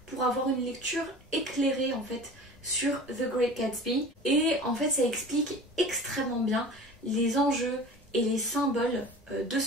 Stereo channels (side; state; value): both; normal; correlation 0.39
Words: pour avoir une lecture éclairée en fait sur The Great Gatsby, et en fait ça explique extrêmement bien les enjeux et les symboles de